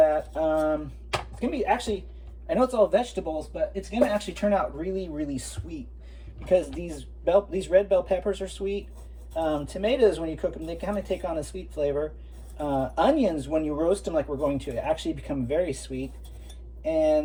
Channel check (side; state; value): both; identical; correlation 1.00